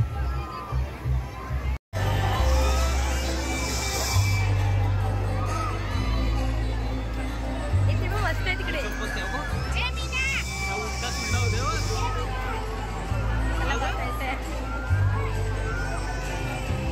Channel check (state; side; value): identical; both; correlation 1.00